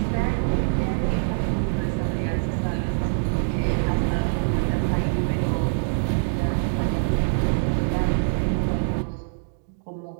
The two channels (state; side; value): silent; left; digital silence